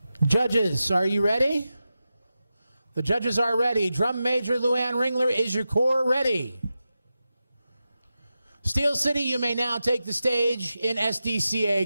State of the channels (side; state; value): both; inverted; correlation -0.91